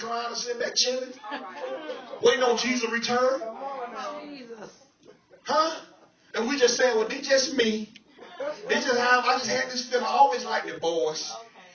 or sitting back chilling? Waiting on Jesus to return? Jesus. Huh? And we just saying, well, they just me. They just I just had this feeling. I always liked the boys.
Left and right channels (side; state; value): both; identical; correlation 1.00